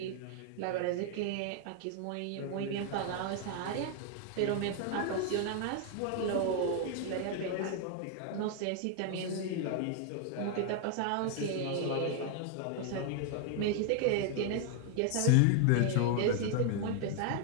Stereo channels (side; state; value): both; different; correlation 0.00